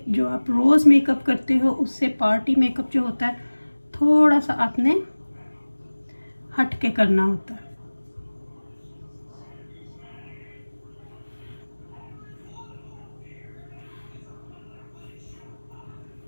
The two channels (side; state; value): both; inverted; correlation -1.00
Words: जो आप रोज़ मेकअप करते हो उससे पार्टी मेकअप जो होता है थोड़ा सा आपने हट के करना होता है।